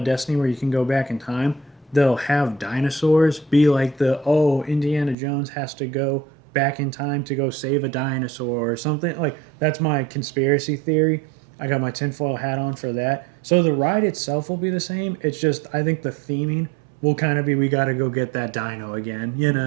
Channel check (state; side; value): drops out; left; at 5.2 s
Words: Destiny where you can go back in time. They'll have dinosaurs be like Indiana Jones has to go back in time to go save a dinosaur or something. Like, that's my conspiracy theory. I got my tinfoil hat on for that. So the ride itself will be the same. It's just, I think the theming will kind of be, we got to go get that dino again, you